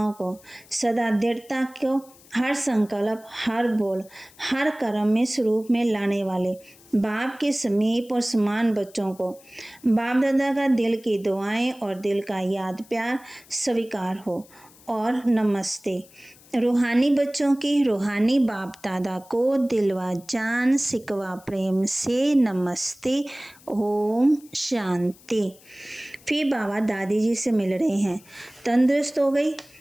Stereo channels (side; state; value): left; noise; hiss, 25 dB below the sound